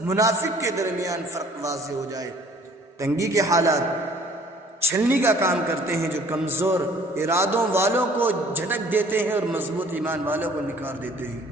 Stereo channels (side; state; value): both; normal; correlation 0.55